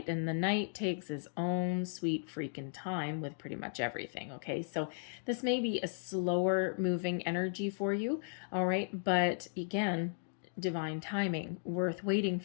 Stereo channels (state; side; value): silent; right; digital silence